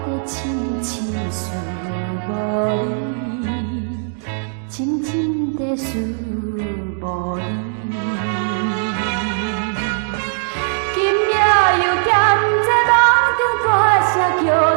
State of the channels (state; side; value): silent; left; digital silence